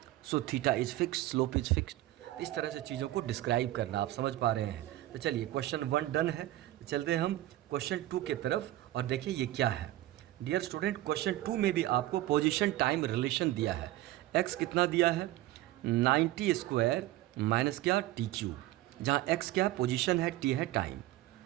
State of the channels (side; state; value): left; quieter; 15.7 dB